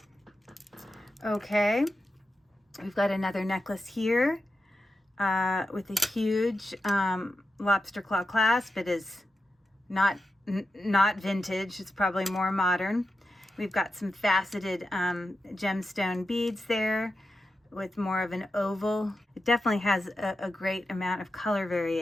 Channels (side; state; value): both; normal; correlation 0.90